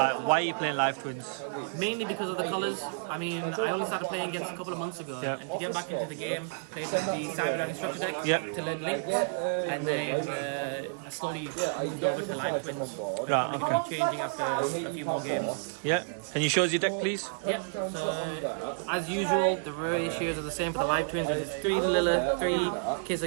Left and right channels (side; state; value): left; silent; digital silence